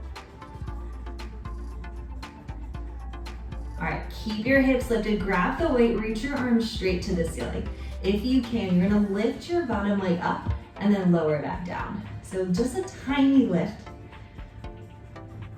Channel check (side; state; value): both; identical; correlation 1.00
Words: All right, keep your hips lifted, grab the weight, reach your arms straight to the ceiling. If you can, you're gonna lift your bottom leg up and then lower it back down. So just a tiny lift.